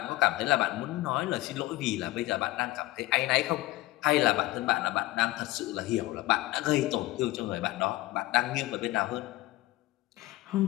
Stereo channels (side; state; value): right; quieter; 18.3 dB